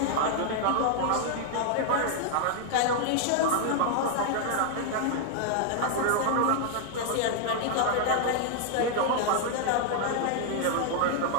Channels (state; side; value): different; both; correlation 0.00